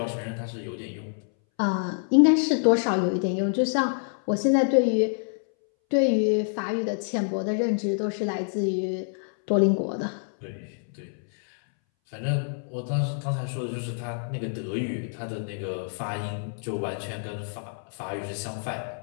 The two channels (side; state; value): right; silent; 60 dB below the other